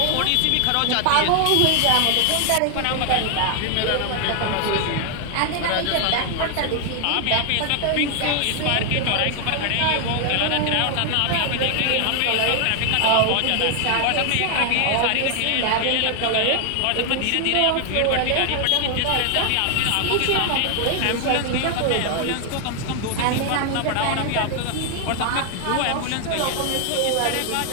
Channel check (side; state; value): both; different; correlation 0.00